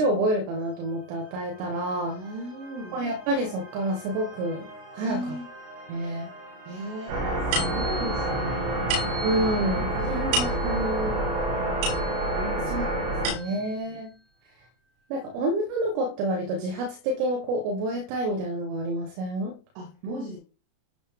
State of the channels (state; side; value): late; left; 33 ms